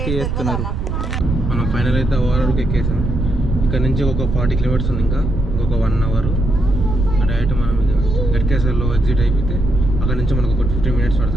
చేస్తున్నారు. మనం ఫైనల్ అయితే ఓవరాల్కి ఎక్కేసాం. ఇక్కడ నుంచి ఒక 40 kilometers ఉంది, ఇంకా ఇంకొక 1 hour. డైరెక్ట్ మనం ఇక గట్కేసర్లో ఎగ్జిట్ అయిపోతే అక్కడ నుంచి మనకు ఒక 15 minutes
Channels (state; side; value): noise; right; rumble, 2 dB below the sound